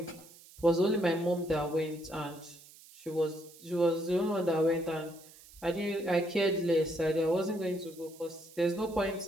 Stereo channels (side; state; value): right; noise; hiss, 22 dB below the sound